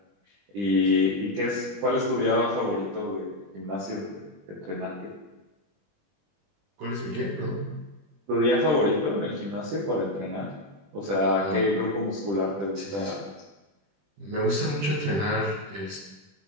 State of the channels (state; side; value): late; left; 20 ms